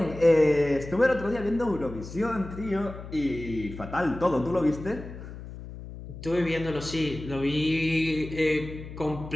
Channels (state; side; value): noise; left; hum, 12 dB below the sound